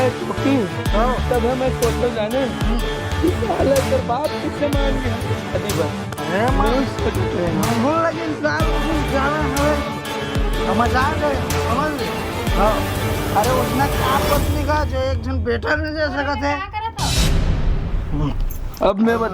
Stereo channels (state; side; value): identical; both; correlation 1.00